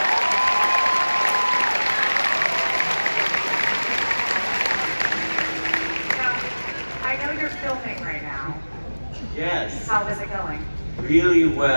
Now, I know you're filming right now. Yes. How is it going? Really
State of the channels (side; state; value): both; inverted; correlation -1.00